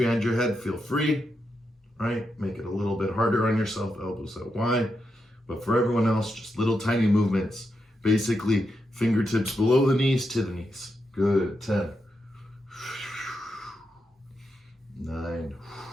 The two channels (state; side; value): normal; both; correlation 0.85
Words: your head, feel free, right? Make it a little bit harder on yourself, elbows out wide. But for everyone else, just little tiny movements, basically fingertips below the knees to the knees. Good, 10. 9.